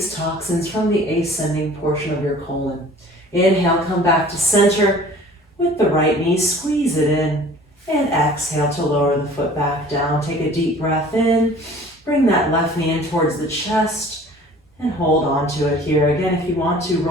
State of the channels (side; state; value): both; normal; correlation 0.48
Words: toxins from the ascending portion of your colon. Inhale, come back to center with the right knee, squeeze it in, and exhale to lower the foot back down. Take a deep breath in, bring that left knee in towards the chest, and hold on to it here. Again, if you want to,